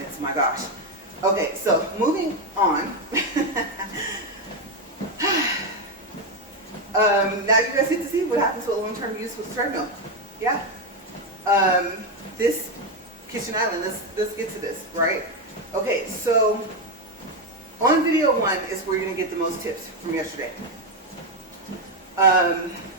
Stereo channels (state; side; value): normal; both; correlation 0.07